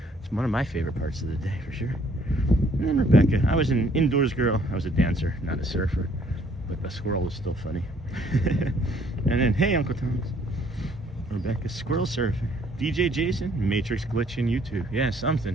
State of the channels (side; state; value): both; normal; correlation 0.63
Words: It's one of my favorite parts of the day for sure. And then Rebecca. I was an indoors girl. I was a dancer, not a surfer. But the squirrel is still funny. And then, hey, Uncle Thomas. Rebecca, squirrel surfing. DJ Jason, Matrix glitch in YouTube. Yeah, something.